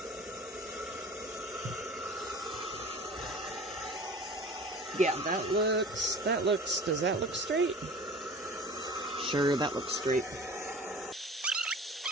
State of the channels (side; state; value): both; normal; correlation 0.41